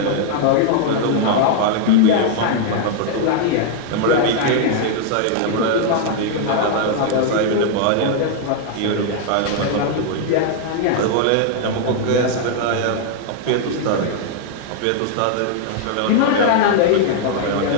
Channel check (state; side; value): different; both; correlation 0.00